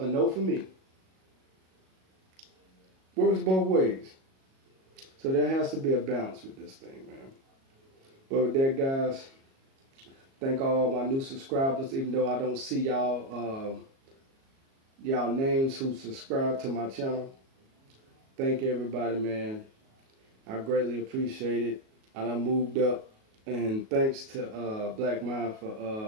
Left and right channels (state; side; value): late; left; 37 ms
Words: no for me. Works both ways. So there has to be a balance with this thing, man. But with that, guys, thank all my new subscribers, even though I don't see y'all y'all names who subscribe to my channel. Thank everybody, man. I greatly appreciate it. And I moved up. And thanks to Black Mind